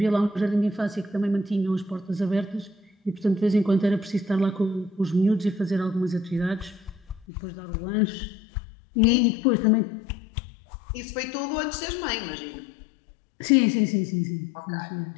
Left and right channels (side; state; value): right; drops out; at 7.2 s